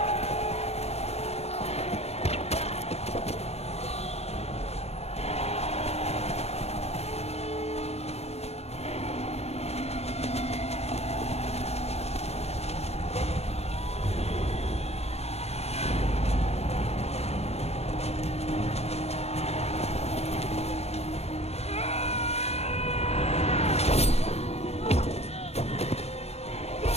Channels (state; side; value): late; right; 0.31 ms